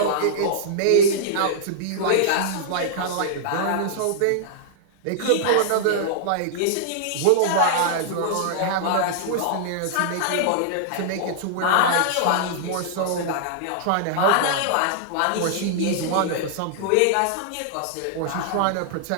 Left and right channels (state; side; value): different; both; correlation -0.01